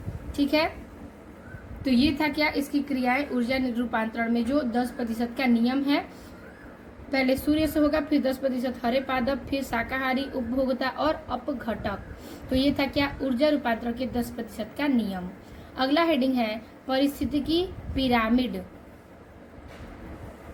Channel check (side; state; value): both; identical; correlation 1.00